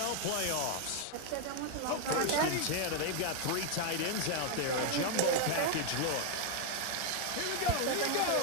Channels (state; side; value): different; both; correlation 0.00